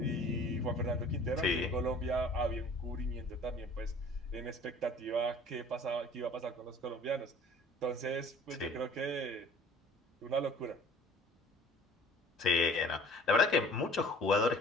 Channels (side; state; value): both; normal; correlation 0.49